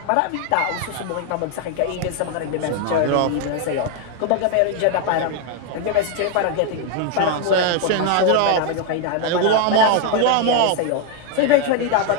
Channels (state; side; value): different; both; correlation 0.01